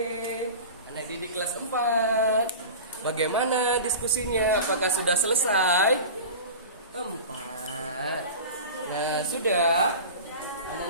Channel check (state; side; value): inverted; both; correlation -0.33